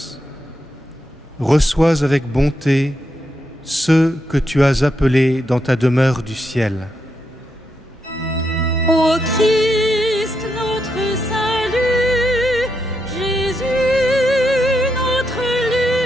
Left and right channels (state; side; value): normal; both; correlation 0.82